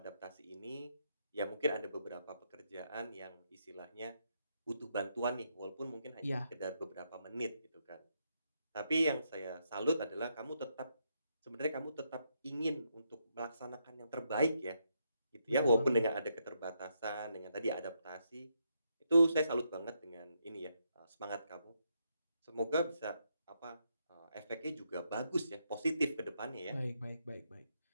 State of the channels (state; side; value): inverted; both; correlation -0.79